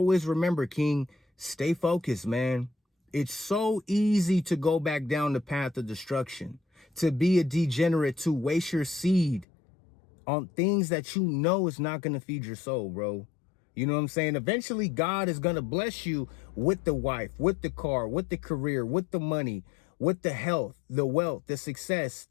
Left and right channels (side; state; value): right; drops out; at 9.5 s